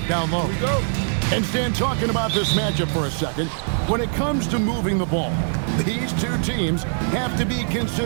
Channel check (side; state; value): left; silent; digital silence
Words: down low. Here we go. And Stan, talking about this matchup for a second, when it comes to moving the ball, these two teams have to be